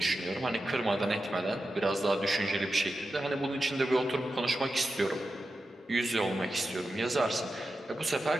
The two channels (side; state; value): both; normal; correlation 0.91